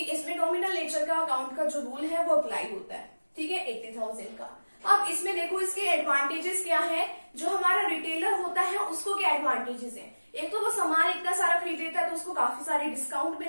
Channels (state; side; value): inverted; both; correlation -1.00